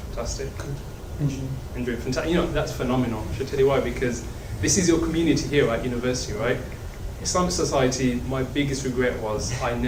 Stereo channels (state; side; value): identical; both; correlation 1.00